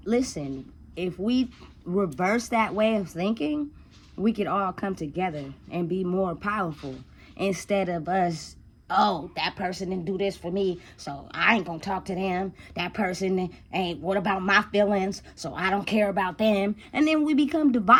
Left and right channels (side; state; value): both; identical; correlation 1.00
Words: listen, if we reverse that way of thinking, we could all come together and be more powerful instead of us, oh, that person didn't do this for me, so I ain't gonna talk to them. That person ain't, what about my feelings? So I don't care about them. And then we become